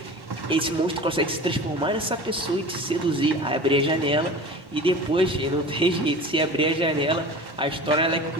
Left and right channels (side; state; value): both; normal; correlation 0.36